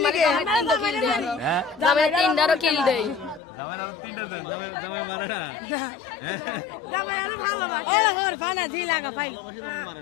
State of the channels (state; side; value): drops out; right; at 3.4 s